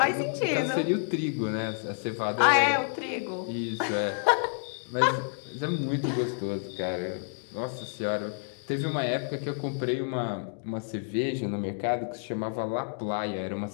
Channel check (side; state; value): right; silent; digital silence